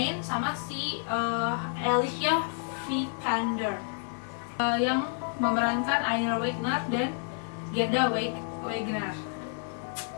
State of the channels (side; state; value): right; silent; 58 dB below the other